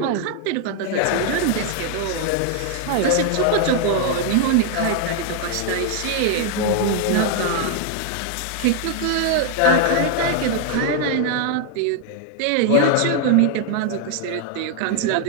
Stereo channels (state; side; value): different; both; correlation 0.00